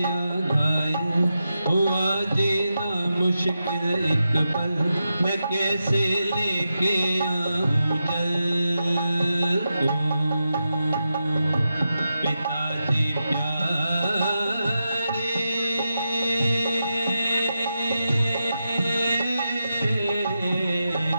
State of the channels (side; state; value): both; inverted; correlation -0.88